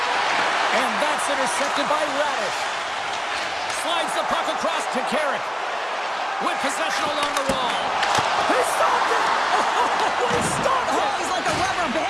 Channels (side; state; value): both; identical; correlation 1.00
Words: And that's intercepted by Radish. Slides the puck across to Carrick. With possession along the wall. He stopped it! Oh, he stopped it! Oh, he's like a rubber